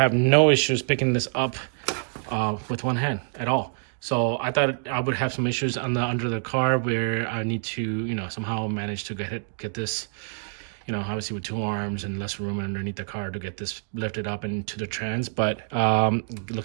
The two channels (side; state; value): left; silent; 61 dB below the other